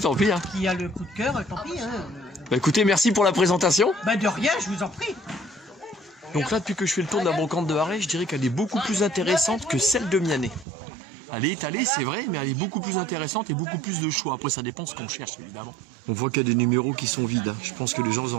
tant pis. Hein. Qui a le coup de cœur, tant pis. Hein. Bah écoutez, merci pour la présentation. Bah de rien, je vous en prie. Donc là, depuis que je fais le tour de la brocante de Arrêt, je dirais qu'elle est beaucoup plus intéressante que celle de Mianet. Elle est étalée, c'est vrai, mais elle est beaucoup plus intéressante et beaucoup plus de choix. Après, ça dépend de ce qu'on cherche, évidemment. On voit qu'il y a des numéros qui sont vides. Hein. Je pense que les gens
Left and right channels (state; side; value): drops out; left; at 10.7 s